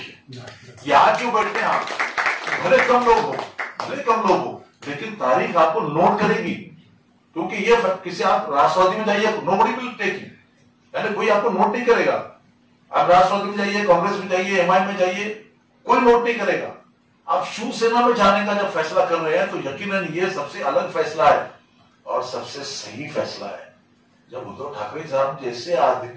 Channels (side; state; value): both; identical; correlation 1.00